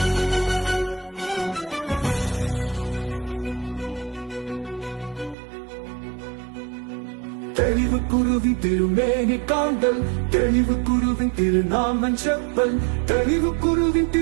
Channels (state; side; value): drops out; left; at 5.4 s